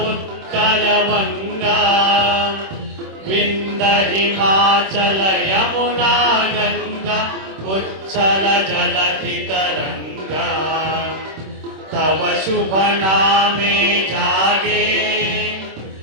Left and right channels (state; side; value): late; left; 26 ms